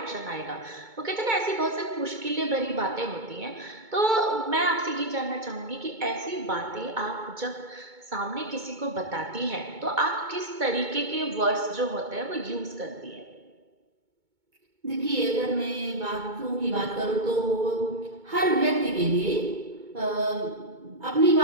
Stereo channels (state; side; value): late; left; 2.2 ms